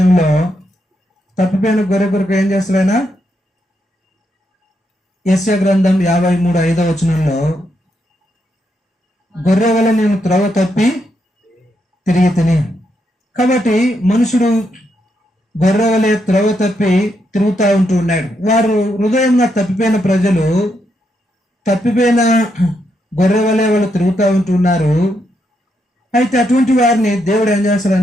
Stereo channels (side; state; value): both; normal; correlation 0.80